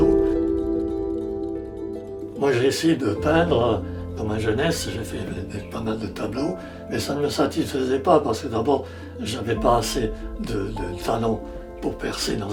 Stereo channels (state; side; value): identical; both; correlation 1.00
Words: Moi j'ai essayé de peindre dans ma jeunesse, j'ai fait pas mal de tableaux, mais ça ne me satisfaisait pas parce que d'abord je n'avais pas assez de talent pour percer dans